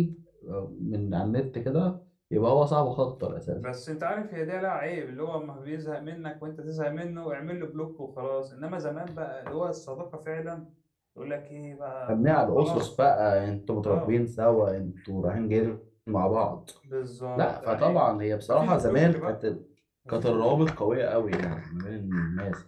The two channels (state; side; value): identical; both; correlation 1.00